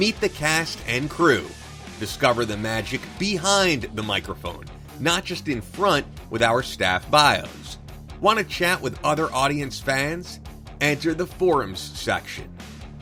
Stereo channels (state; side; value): identical; both; correlation 1.00